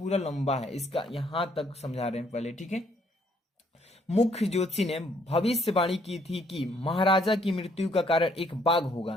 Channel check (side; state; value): both; normal; correlation 0.67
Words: लंबा है, इसका यहां तक समझा रहे हैं पहले। ठीक है, मुख्य ज्योतिषी ने भविष्यवाणी की थी कि महाराजा की मृत्यु का कारण एक बाघ